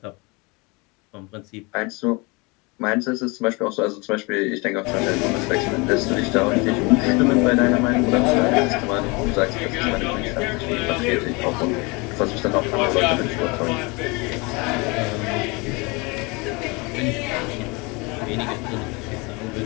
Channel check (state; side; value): quieter; right; 27.4 dB